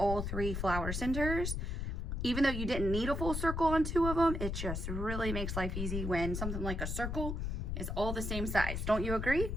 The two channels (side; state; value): left; noise; rumble, 3 dB below the sound